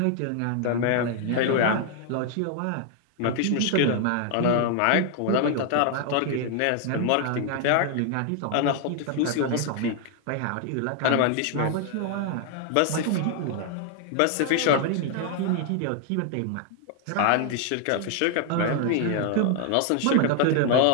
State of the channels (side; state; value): both; different; correlation 0.00